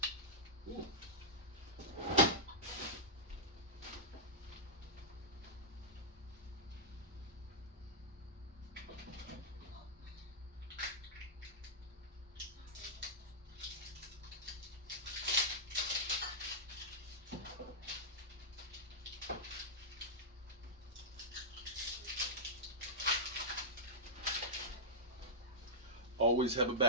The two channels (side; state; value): both; normal; correlation -0.11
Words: Ooh. Always have a